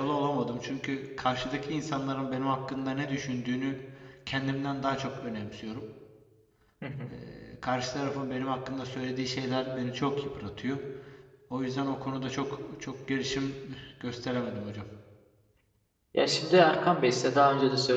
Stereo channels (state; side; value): identical; both; correlation 1.00